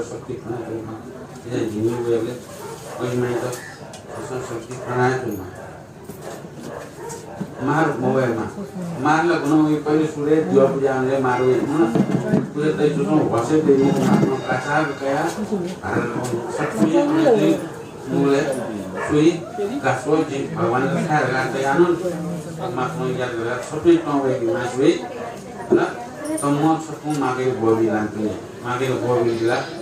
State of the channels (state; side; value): identical; both; correlation 1.00